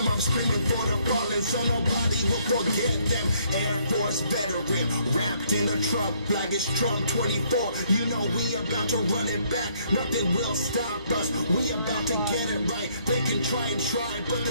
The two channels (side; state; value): both; inverted; correlation -0.67